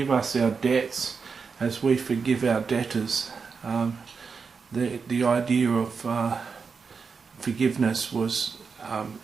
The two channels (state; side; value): quieter; left; 5.4 dB